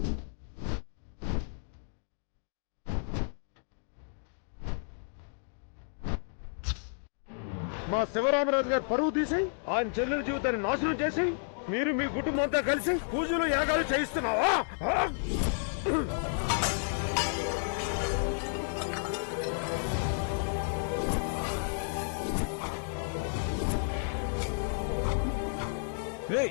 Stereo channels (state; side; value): silent; right; digital silence